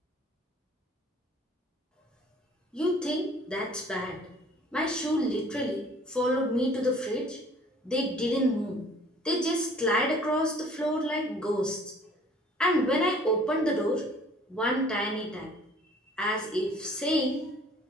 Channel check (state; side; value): normal; both; correlation 0.53